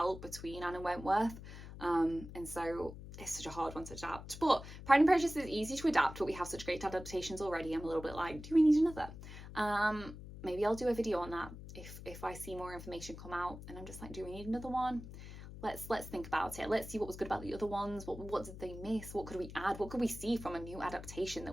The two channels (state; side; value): noise; left; hum, 13 dB below the sound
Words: between Anne and Wentworth. And so it's such a hard one to adapt. But Pride and Prejudice is easy to adapt, but we have such great adaptations already. I'm a little bit like, do we need another? Maybe I'll do a video on that if I see more information come out and I'm just like, do we need another one? Let's think about it. Let's see what was good about the other ones. What did they miss? What could we add? What could we see from a new adaptation